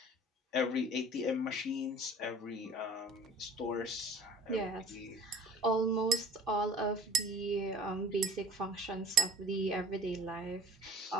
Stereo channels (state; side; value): normal; both; correlation 0.47